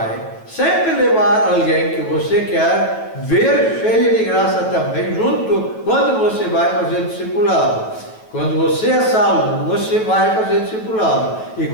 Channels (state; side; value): late; right; 9.2 ms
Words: sempre levar alguém que você quer ver cheio de graça também, junto, quando você vai fazer discipulado. Quando você é salvo, você vai fazer discipulado. E